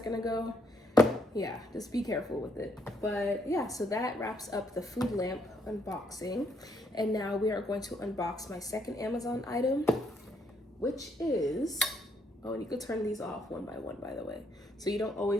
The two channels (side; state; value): both; normal; correlation 0.72